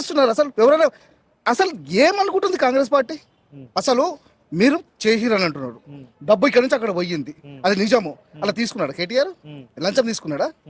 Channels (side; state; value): both; identical; correlation 1.00